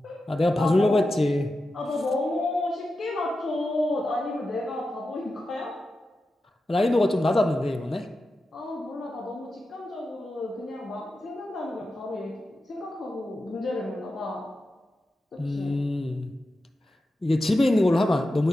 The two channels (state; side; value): normal; both; correlation 0.91